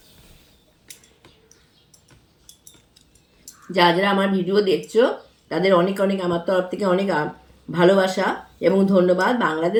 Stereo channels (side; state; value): both; identical; correlation 1.00